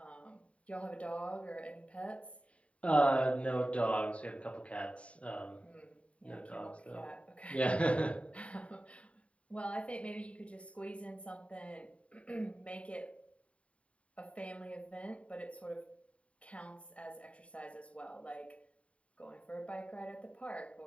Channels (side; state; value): right; late; 0.063 ms